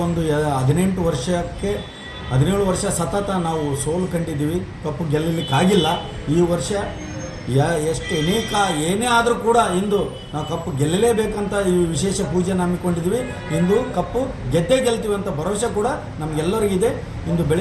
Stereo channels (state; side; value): identical; both; correlation 1.00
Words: ಒಂದು 17 ವರ್ಷ ಸತತ ನಾವು ಸೋಲು ಕಂಡಿದ್ದೀವಿ, ಕಪ್ಪು ಗೆಲ್ಲಲಿಕ್ಕಾಗಿಲ್ಲ. ಈ ವರ್ಷ ಏನೇ ಆದರೂ ಕೂಡ ಇಂದು ನಾವು ಕಪ್ಪು ಗೆಲ್ಲಲೇಬೇಕಂತ ಈ ವಿಶೇಷ ಪೂಜೆನ ಹಮ್ಮಿಕೊಂಡಿದ್ವಿ. ಇಂದು ಕಪ್ಪು ಗೆಲ್ತೀವಿ ಅಂತ ಭರವಸೆ ಕೂಡ ನಮಗೆಲ್ಲರಿಗಿದೆ. ಇಂದು